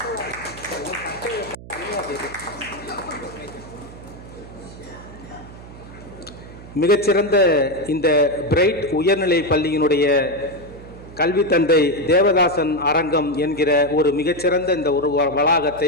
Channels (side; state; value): right; noise; hum, 16 dB below the sound